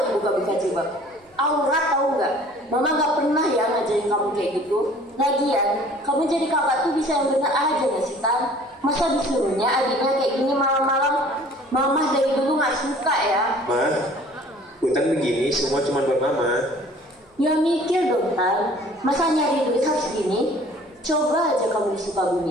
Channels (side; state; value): both; normal; correlation 0.51